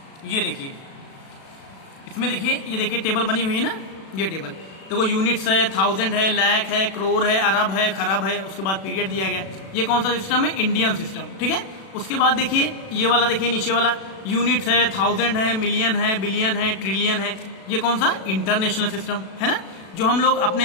ये देखिए, इसमें देखिए, ये देखिए टेबल बनी हुई है ना, ये टेबल देखो, यूनिट्स है, थाउजेंड है, लाख है, करोड़ है, अरब है, खरब है, उसके बाद पीरियड दिया गया। ये कौन सा सिस्टम है? Indian system. ठीक है। उसके बाद देखिए ये वाला, देखिए नीचे वाला, यूनिट्स है, थाउजेंड है, मिलियन है, बिलियन है, ट्रिलियन है, ये कौन सा? इंटरनेशनल सिस्टम है ना, जो हम लोग अपने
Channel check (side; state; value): right; late; 36 ms